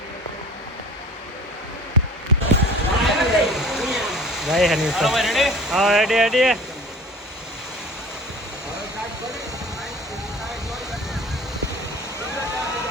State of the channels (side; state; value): both; normal; correlation 0.43